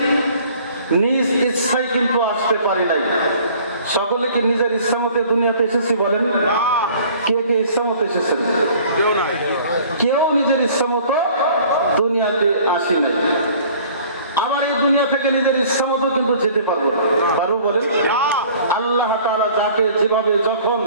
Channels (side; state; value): both; inverted; correlation -0.51